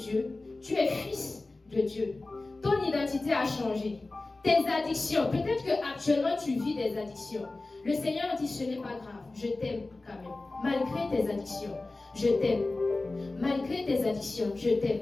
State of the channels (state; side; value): quieter; right; 3.2 dB